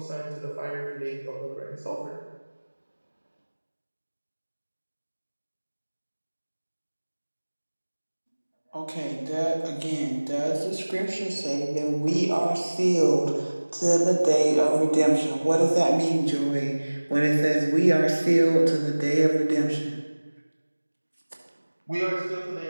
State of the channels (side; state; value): both; inverted; correlation -1.00